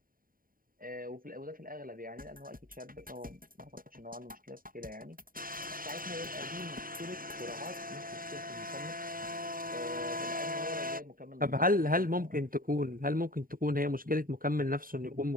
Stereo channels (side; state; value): left; late; 0.41 ms